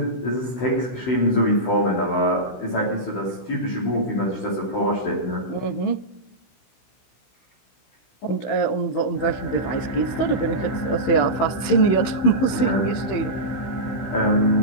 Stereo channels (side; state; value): right; late; 15 ms